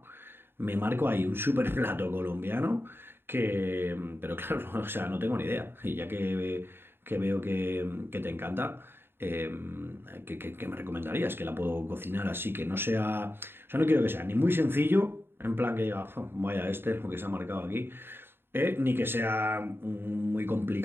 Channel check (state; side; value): late; left; 0.11 ms